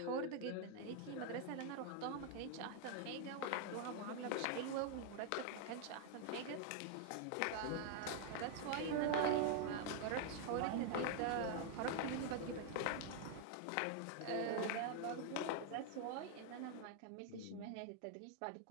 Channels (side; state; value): both; different; correlation 0.00